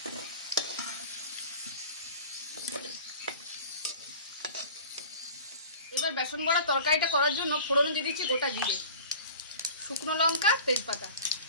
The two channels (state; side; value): inverted; both; correlation -0.41